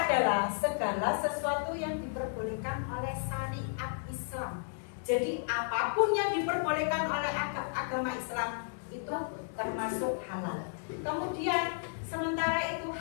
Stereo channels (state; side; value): silent; right; digital silence